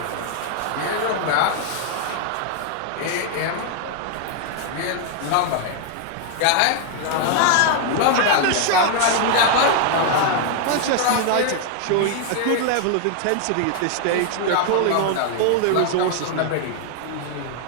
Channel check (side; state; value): both; different; correlation 0.00